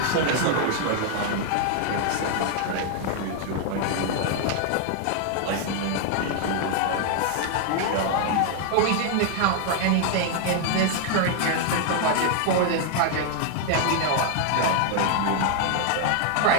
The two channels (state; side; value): different; both; correlation 0.00